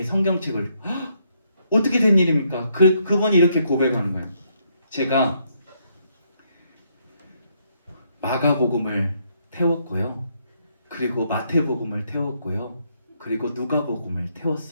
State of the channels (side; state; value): both; inverted; correlation -0.74